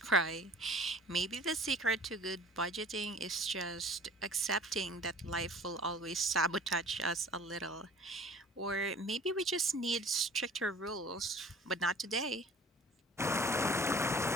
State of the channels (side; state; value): both; normal; correlation 0.48